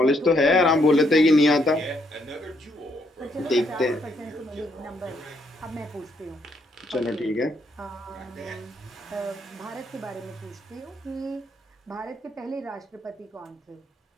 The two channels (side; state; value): both; normal; correlation 0.73